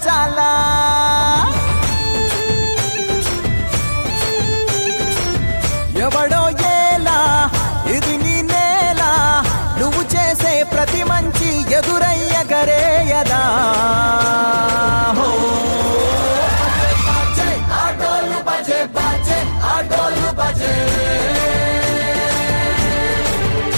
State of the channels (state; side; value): inverted; both; correlation -1.00